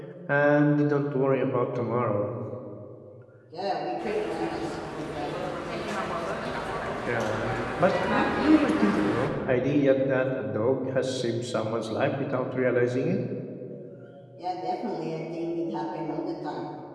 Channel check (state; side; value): identical; both; correlation 1.00